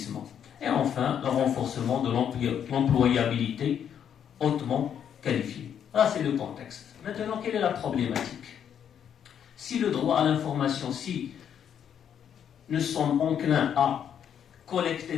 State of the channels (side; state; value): right; quieter; 8.7 dB